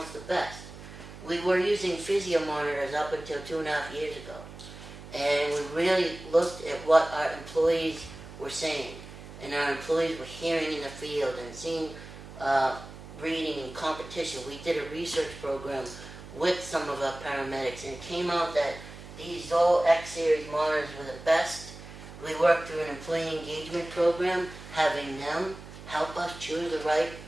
the best. we were using physio monitors up until 2.5 years ago. And we really looked at what our employees were saying. And our employees were hearing in the field and seeing reading and competition. We did a research program with some of our paramedics, and it came out that these Zoll X-Series monitors were the best. We worked through an employee engagement program, having them help us choose the right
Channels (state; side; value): noise; right; hum, 15 dB below the sound